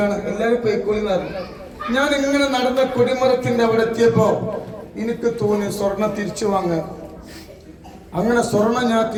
എല്ലാവരും പൊയ്ക്കൊള്ളിനാറ്. ഞാൻ ഇങ്ങനെ നടന്ന കൊടിമരത്തിന്റെ അവിടെ എത്തിയപ്പോ എനിക്ക് തോന്നി സ്വർണം തിരിച്ചു വാങ്ങാൻ. അങ്ങനെ സ്വർണം ഞാൻ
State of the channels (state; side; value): identical; both; correlation 1.00